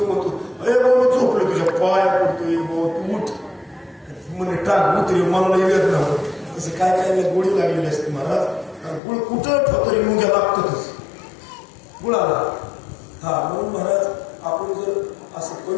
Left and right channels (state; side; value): drops out; right; at 9.0 s